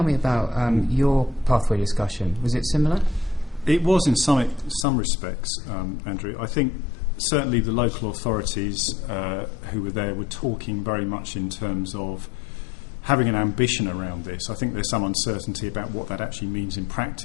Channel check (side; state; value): right; drops out; at 4.9 s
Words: me about your pathway discussion? Was it similar? It was in some respects, Andrew. I think certainly the local authorities who were there were talking very much in terms of having an ambition around this. I think there's some uncertainty about what that actually means in